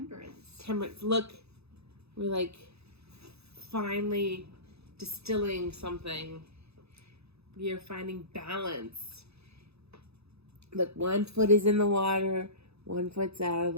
Temperance. Look, we're like finally distilling something. We are finding balance. Look, 1 foot is in the water, 1 foot's out of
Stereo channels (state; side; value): late; left; 0.79 ms